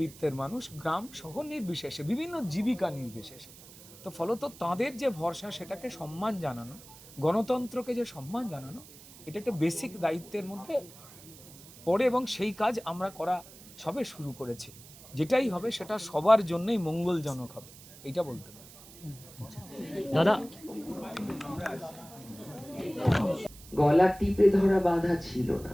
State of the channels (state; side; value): noise; right; hiss, 19 dB below the sound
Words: মানুষ, গ্রাম শহর নির্বিশেষে, বিভিন্ন জীবিকা নির্বিশেষে, তো ফলত তাদের যে ভরসা সেটাকে সম্মান জানানো, গণতন্ত্রকে যে সম্মান জানানো, এটা একটা বেসিক দায়িত্বের মধ্যে পড়ে, এবং সেই কাজ আমরা করা সবে শুরু করেছি। যেটাই হবে সেটা সবার জন্যই মঙ্গলজনক হবে, এইটা বলতে পারি। দাদা, গলা টিপে ধরা বাধা ছিল না,